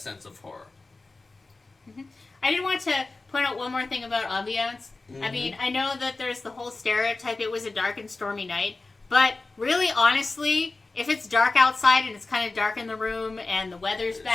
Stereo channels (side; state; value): right; quieter; 3.4 dB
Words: of horror. Mm-hmm. I did want to point out one more thing about Ambiance. Mm-hmm. I mean, I know that there's the whole stereotype it was a dark and stormy night, but really, honestly, if it's dark outside and it's kind of dark in the room and the weather's